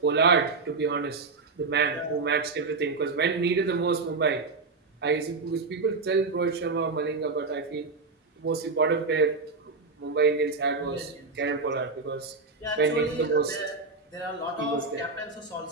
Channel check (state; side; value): quieter; left; 4.1 dB